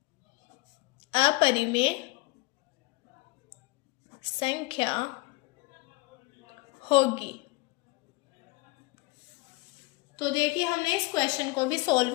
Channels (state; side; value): quieter; right; 23.5 dB